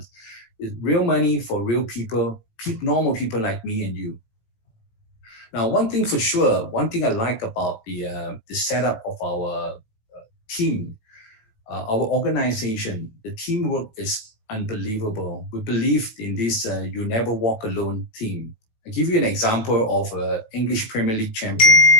It's real money for real people, normal people like me and you. Now, one thing for sure, one thing I like about the setup of our team, our organization, the teamwork is unbelievable. We believe in this you never walk alone team. I'll give you an example of an English Premier League champion.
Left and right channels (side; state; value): right; late; 18 ms